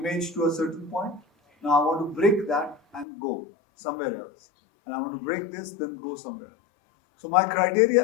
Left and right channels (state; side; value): drops out; right; at 3.1 s